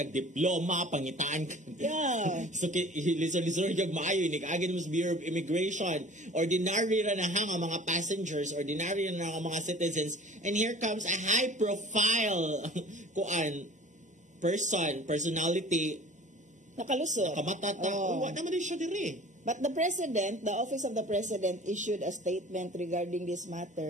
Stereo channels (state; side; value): normal; both; correlation 0.44